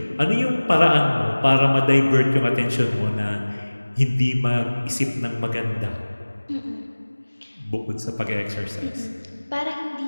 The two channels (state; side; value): inverted; both; correlation -1.00